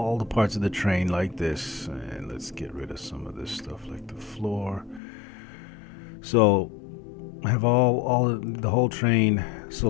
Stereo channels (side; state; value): right; drops out; at 5.0 s